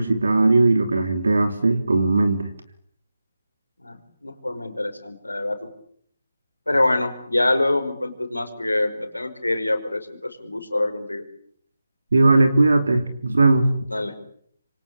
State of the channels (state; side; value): inverted; both; correlation -0.93